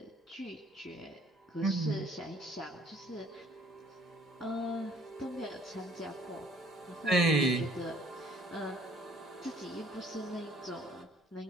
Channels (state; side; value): normal; both; correlation 0.58